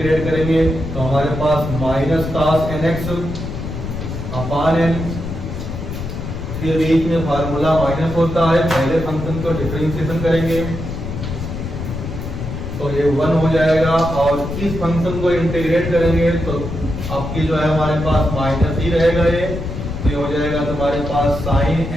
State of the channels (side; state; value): left; noise; rumble, 6 dB below the sound